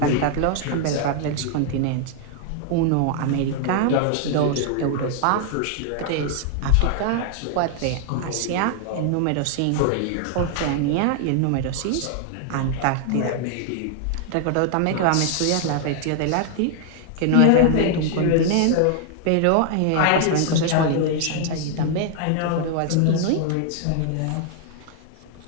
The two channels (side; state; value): both; different; correlation 0.00